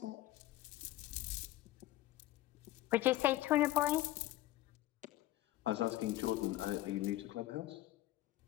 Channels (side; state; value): right; quieter; 15.5 dB